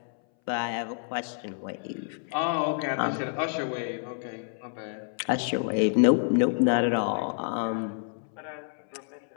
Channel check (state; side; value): silent; right; 59 dB below the other